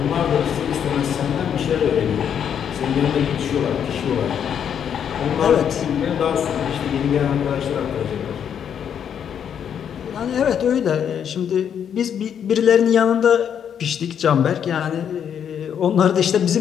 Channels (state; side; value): quieter; right; 8.4 dB